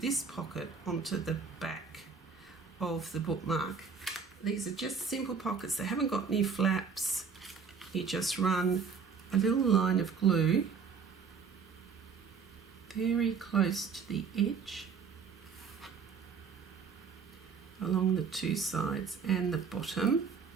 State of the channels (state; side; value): quieter; left; 5.9 dB